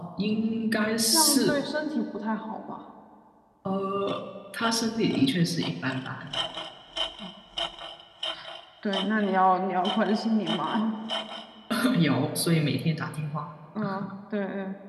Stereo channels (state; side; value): identical; both; correlation 1.00